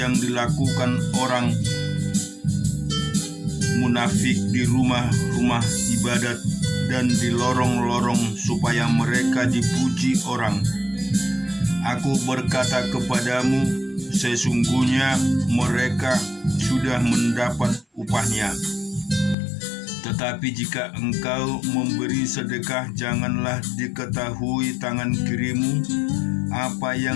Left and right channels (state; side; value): drops out; right; at 19.4 s